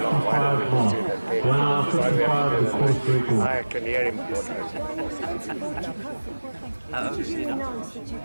mark. 1 hour 55 is the course record. I can hear him. How old is he now?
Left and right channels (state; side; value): inverted; both; correlation -1.00